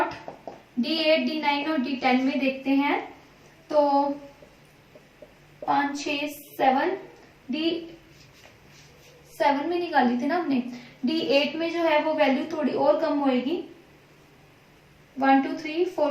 D8 D9 और D10 में देखते हैं, तो 5 6 7 D7 में निकाली थी ना हमने। D8 में जो है वो वैल्यू थोड़ी और कम होएगी, 1 2 3 4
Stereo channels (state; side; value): identical; both; correlation 1.00